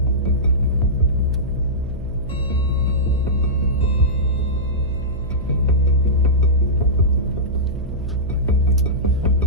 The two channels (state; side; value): noise; right; hum, 11 dB below the sound